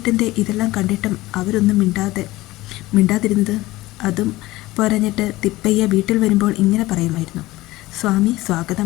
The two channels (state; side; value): quieter; right; 18.4 dB